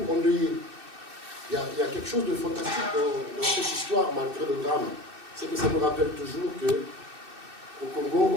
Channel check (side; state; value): left; late; 2.6 ms